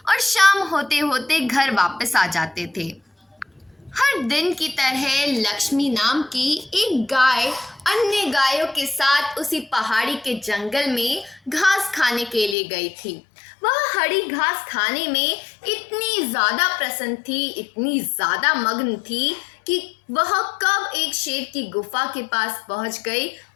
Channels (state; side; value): drops out; right; at 12.6 s